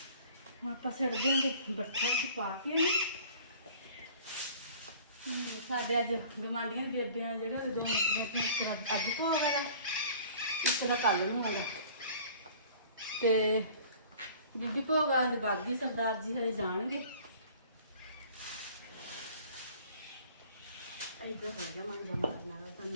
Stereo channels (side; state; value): both; inverted; correlation -0.49